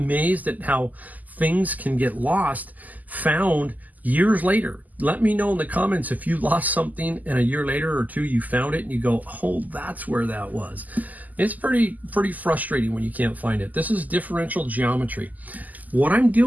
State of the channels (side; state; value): left; late; 0.080 ms